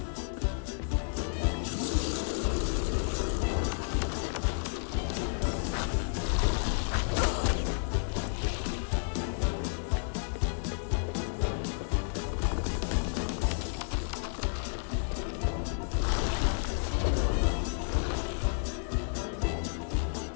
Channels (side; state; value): right; silent; 57 dB below the other